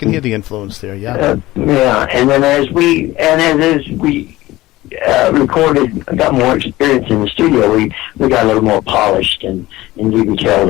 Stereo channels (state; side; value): quieter; right; 17.7 dB